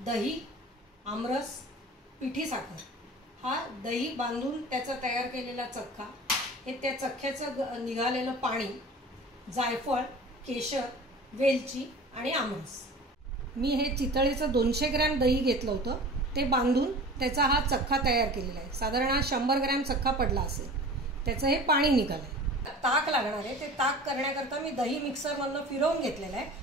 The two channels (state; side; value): normal; both; correlation 0.39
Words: आमरस, पिठी साखर. हा दही बांधून त्याचा तयार केलेला चक्का, हे त्या चक्क्याचं निघालेलं पाणी, जायफळ, केशर, वेलची आणि आमरस. मी हे चितळेचं 200 ग्रॅम दही घेतलं होतं, ते बांधून त्याचा हा चक्का तयार केलेला आहे. साधारण 100 ग्रॅम चक्का पडला असेल. त्याचं हे पाणी निघालंय. ताक लागणार आहे. ते ताक करण्याकरता मी दही मिक्सरमधनं फिरवून घेतलेलं आहे